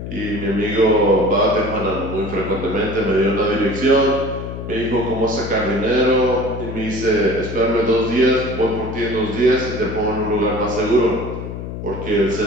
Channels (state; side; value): noise; left; hum, 8 dB below the sound